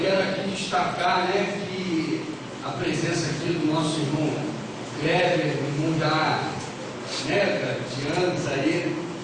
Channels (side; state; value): both; identical; correlation 1.00